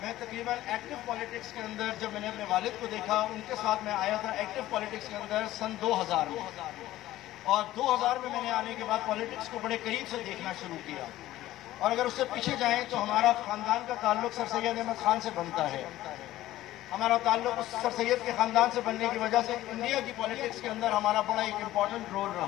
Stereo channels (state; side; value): quieter; right; 15.1 dB